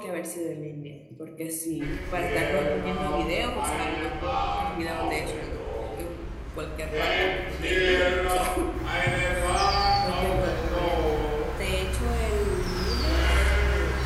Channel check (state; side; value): identical; both; correlation 1.00